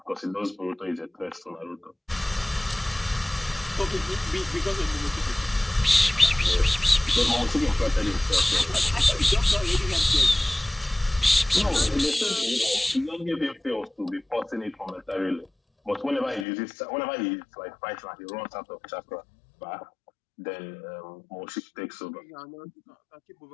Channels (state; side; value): drops out; right; at 16.4 s